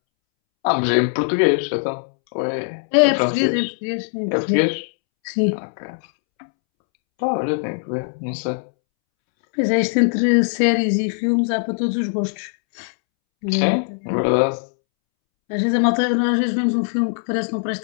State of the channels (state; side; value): silent; right; 65 dB below the other